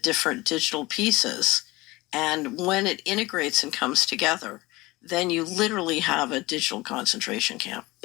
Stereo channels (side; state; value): right; quieter; 21.0 dB